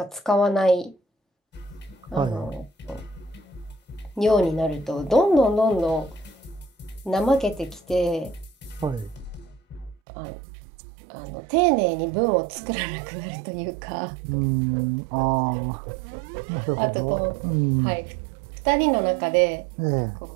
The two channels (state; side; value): drops out; left; at 10.0 s